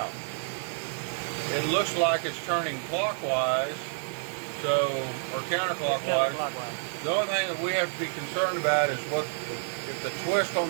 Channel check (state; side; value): silent; left; 59 dB below the other